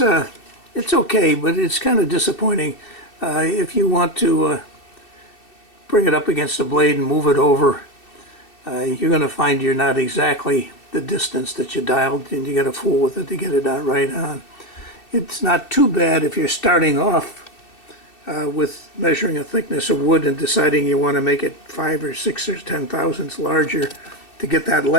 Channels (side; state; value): right; late; 2.7 ms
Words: but it's kind of disappointing. If you want to bring it up against the blade and move it over, you're going to find you're not exactly the distance that you dialed, and you got to fool with it to get it out right on. It's not too bad if you're starting off with measuring a thickness of wood and deciding you want to make it 5 or 6 or 10 thousandths larger to get that